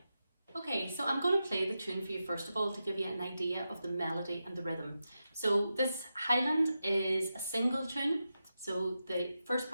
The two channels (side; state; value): both; inverted; correlation -0.90